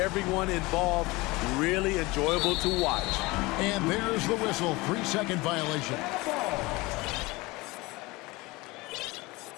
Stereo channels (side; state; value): right; quieter; 22.6 dB